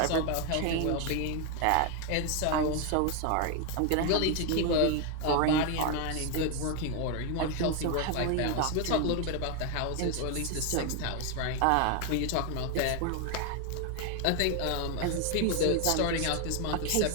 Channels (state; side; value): different; both; correlation 0.01